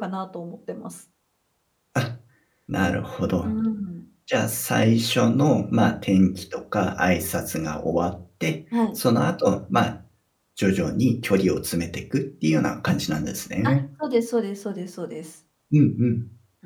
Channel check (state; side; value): identical; both; correlation 1.00